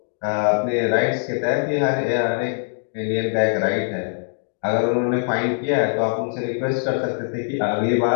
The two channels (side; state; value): right; silent; digital silence